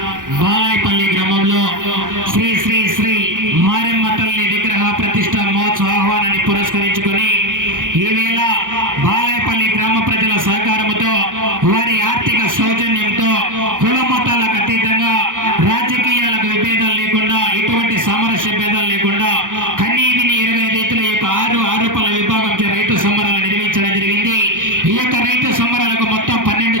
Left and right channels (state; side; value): late; left; 0.88 ms